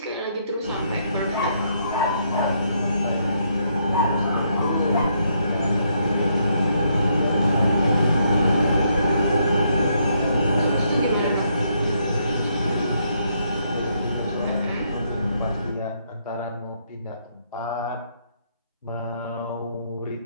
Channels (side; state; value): both; inverted; correlation -0.74